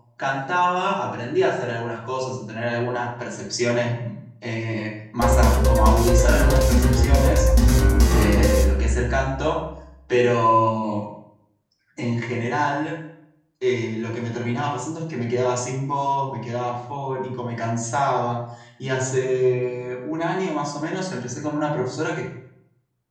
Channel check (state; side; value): identical; both; correlation 1.00